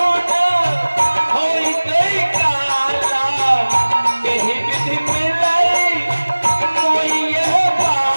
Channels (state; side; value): inverted; both; correlation -1.00